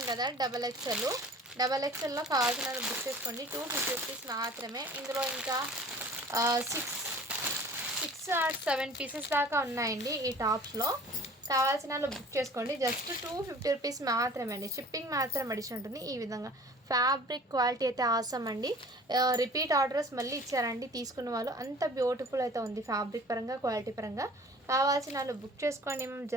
కదా డబల్ ఎక్స్ఎల్లో కావాల్సిన బుక్ చేసుకోండి. 250 రూపీస్ మాత్రమే. ఇందులో ఇంకా 6 or 7 పీసెస్ దాకా ఉన్నాయండి ఈ టాప్స్లో. కావాల్సిన వాళ్ళు బుక్ చేసుకోండి. జస్ట్ 250 రూపీస్ మాత్రమే అండి. షిప్పింగ్ మాత్రం అడిషన్ ఉంటుంది. ఈ విధంగా ఫ్యాబ్రిక్ క్వాలిటీ అయితే ఆసమ్ అండి. రిపీట్ ఆర్డర్స్ మళ్ళీ ఇచ్చారండి తీసుకున్న వాళ్ళు. అంత బ్యూటిఫుల్ అయితే ఉంది ఫ్యాబ్రిక్ పరంగా, క్వాలిటీ పరంగా. కావాల్సిన వాళ్ళు బుక్ చేసుకోండి. మేము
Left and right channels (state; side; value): normal; both; correlation 0.46